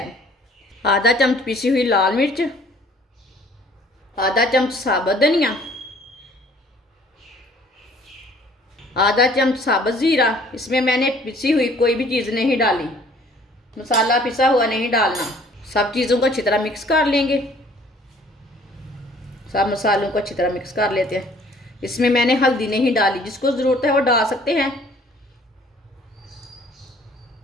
आधा चम्मच पिसी हुई लाल मिर्च, आधा चम्मच साबुत धनिया, आधा चम्मच साबुत ज़ीरा। इसमें मैंने पिसी हुई कोई भी चीज़ नहीं डाली, मसाला पिसा हुआ नहीं डालना। सब चीज़ों को अच्छी तरह मिक्स कर लेंगे। सब मसालों को अच्छी तरह मिक्स कर लेते हैं। इसमें मैंने हल्दी नहीं डाली, जिसको ज़रूरत है वो डाल सकते हैं।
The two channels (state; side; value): normal; both; correlation 0.56